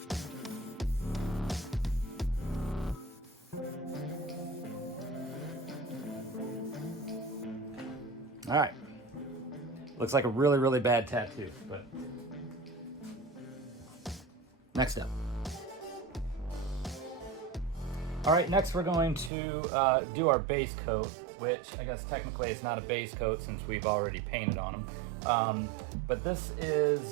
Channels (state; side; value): drops out; left; at 19.3 s